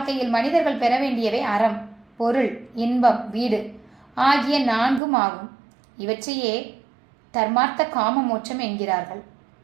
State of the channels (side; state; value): left; drops out; at 5.0 s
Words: மனிதர்கள் பெற வேண்டியவை அறம், பொருள், இன்பம், வீடு ஆகிய நான்கும் ஆகும். இவற்றையே தர்மார்த்த காம மோட்சம் என்கிறார்கள்.